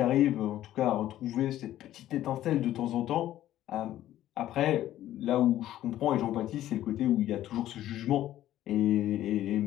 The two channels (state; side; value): quieter; right; 13.2 dB